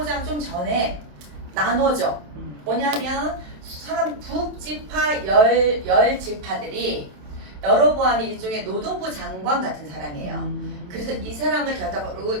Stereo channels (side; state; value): left; late; 27 ms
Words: 좀 전에 나눠져. 뭐냐면 사람 북지파 열 지파들이 여로보암이 일종의 노동부 장관 같은 사람이에요. 그래서 이 사람을 결단으로